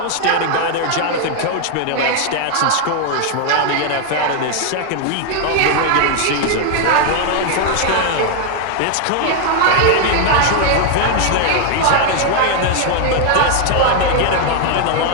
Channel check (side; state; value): both; different; correlation 0.00